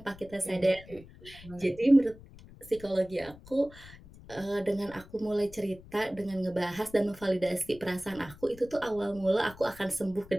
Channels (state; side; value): noise; left; rumble, 20 dB below the sound